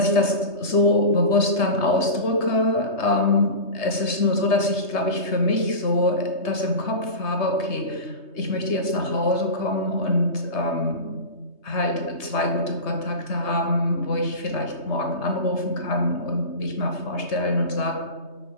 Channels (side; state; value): right; late; 3.2 ms